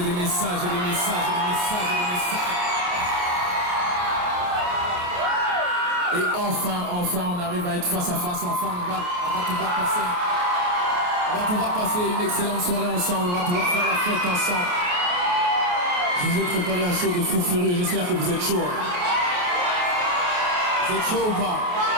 des messages et des messages et des messages et des messages. Et enfin, on arrive à être face à face, enfin, on va pouvoir passer une excellente soirée ensemble, on va pouvoir faire la fête ensemble. Je vous ai préparé un show de fou furieux, j'espère que vous êtes chaud. Vous êtes chaud ou pas?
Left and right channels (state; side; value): late; left; 28 ms